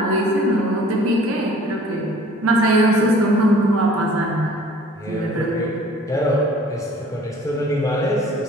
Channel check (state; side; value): normal; both; correlation 0.51